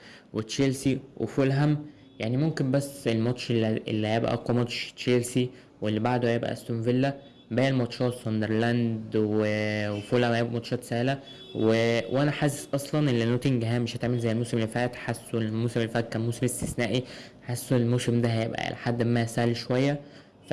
وتشيلسي وفولهام. يعني ممكن بس الماتش اللي هيبقى أقوى ماتش تشيلسي، واللي بعده هيبقى أستون فيلا. باقي الماتشات ساندرلاند وفولهام هيبقوا ماتشات سهلة. وانا حاسس اصلا ان نوتنجهام مش هتعمل زي الموسم اللي فات. حاسه الموسم اللي فات كان موسم استثنائي، حاسه الموسم ده هيبقى لحد ما سهل شوية.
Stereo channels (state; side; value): identical; both; correlation 1.00